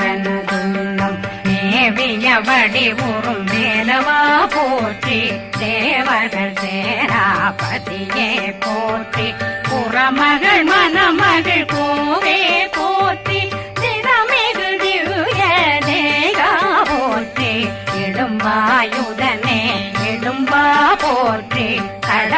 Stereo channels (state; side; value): identical; both; correlation 1.00